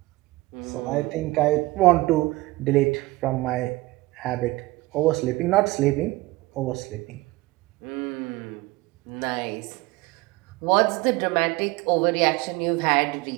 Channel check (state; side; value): quieter; left; 20.6 dB